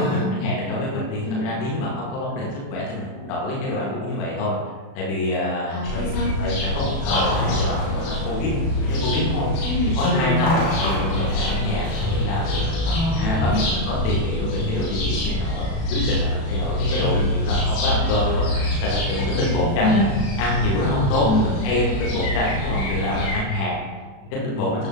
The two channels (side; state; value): right; late; 36 ms